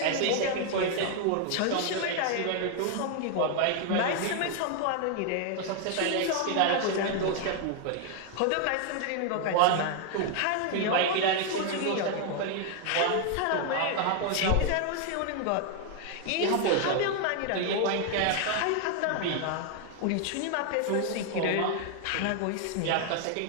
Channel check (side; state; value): both; different; correlation 0.00